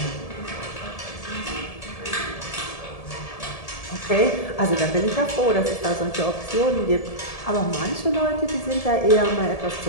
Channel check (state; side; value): late; right; 1.7 ms